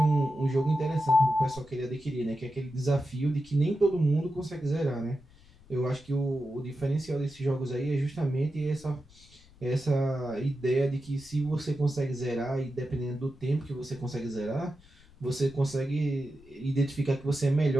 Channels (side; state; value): left; noise; rumble, 26 dB below the sound